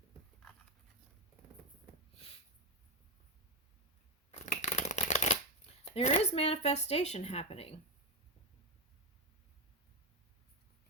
There is manifestation happening.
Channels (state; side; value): normal; both; correlation 0.09